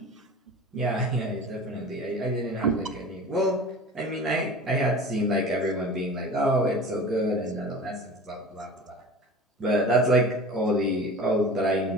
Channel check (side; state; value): both; normal; correlation 0.38